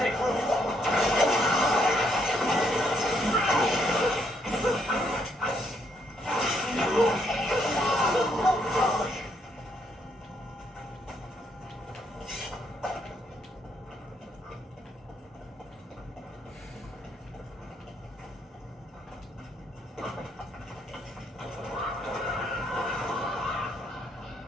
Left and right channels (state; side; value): normal; both; correlation 0.73